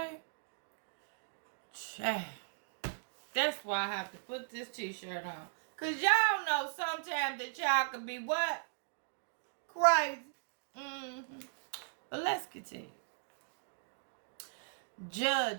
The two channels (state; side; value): silent; left; digital silence